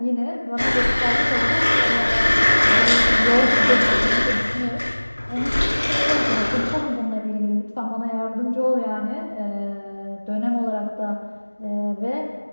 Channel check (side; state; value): both; inverted; correlation -1.00